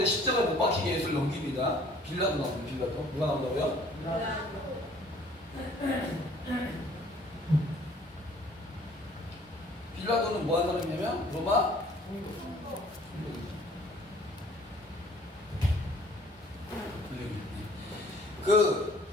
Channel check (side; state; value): both; normal; correlation 0.55